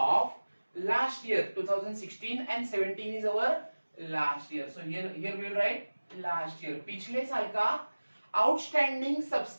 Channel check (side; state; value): both; inverted; correlation -1.00